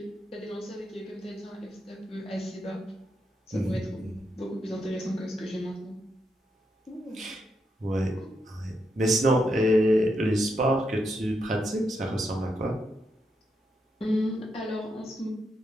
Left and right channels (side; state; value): both; normal; correlation 0.82